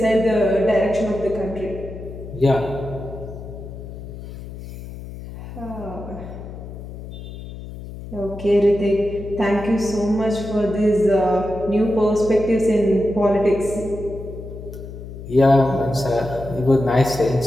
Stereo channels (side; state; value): left; noise; hum, 12 dB below the sound